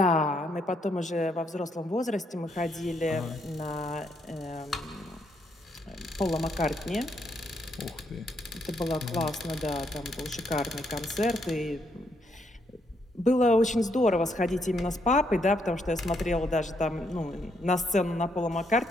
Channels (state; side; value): normal; both; correlation 0.75